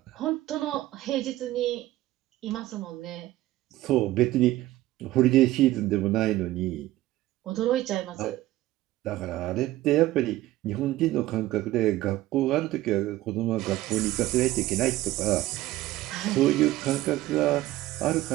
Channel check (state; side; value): quieter; left; 16.1 dB